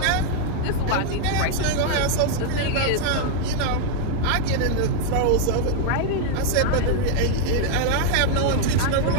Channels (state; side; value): different; both; correlation -0.01